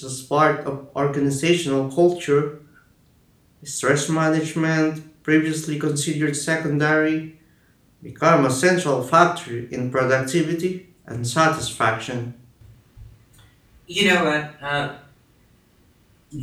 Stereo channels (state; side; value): identical; both; correlation 1.00